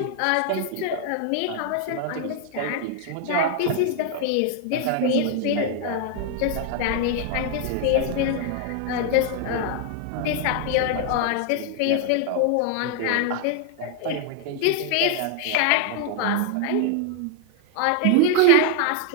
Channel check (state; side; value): different; both; correlation 0.00